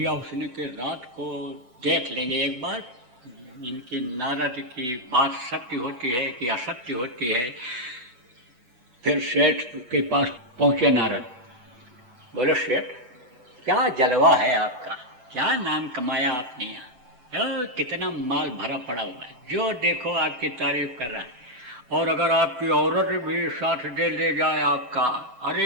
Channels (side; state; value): left; late; 8.1 ms